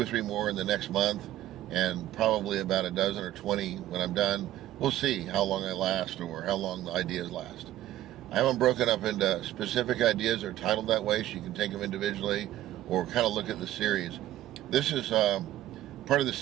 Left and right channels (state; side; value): quieter; left; 13.7 dB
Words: or 3 more in the next month, and probably about a dozen or 20 when I'm done. We'll see how long I last or how long the ideas last. I have them broken up into specific ideas or titled that way, so you can take them individually or kind of look at the series. This is part of the